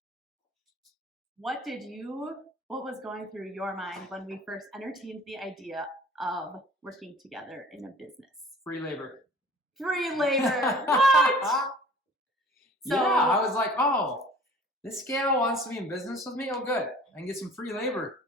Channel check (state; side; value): normal; both; correlation 0.48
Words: what was going through your mind when we first entertained the idea of working together in a business? Free labor. Free labor. What? So, yeah, I was like, oh, this gal wants to be in business with me? Oh, good. I can get some free labor.